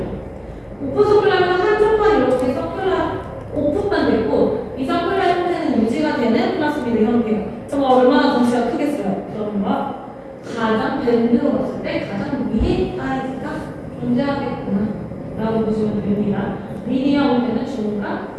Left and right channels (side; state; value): both; identical; correlation 1.00